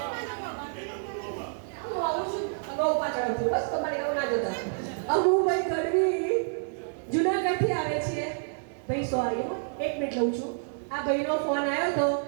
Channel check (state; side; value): silent; left; digital silence